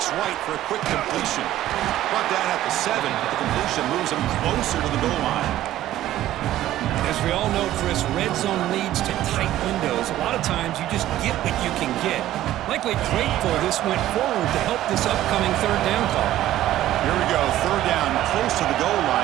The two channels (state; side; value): quieter; left; 13.7 dB